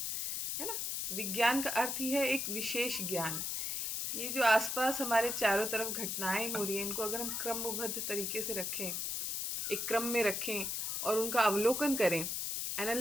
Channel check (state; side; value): noise; left; hiss, 1 dB below the sound